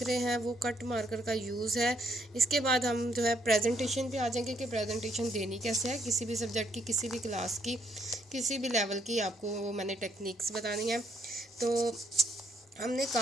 रहे हैं वो कट मार्कर का यूज़ है। इसके बाद हम जो है प्रेजेंटेशन पे आ जाएंगे कि प्रेजेंटेशन देनी कैसे है, किसी भी सब्जेक्ट की, किसी भी क्लास की, किसी भी लेवल की। आपको मैंने टेक्निक्स बतानी है। तो हमने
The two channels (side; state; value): both; normal; correlation 0.72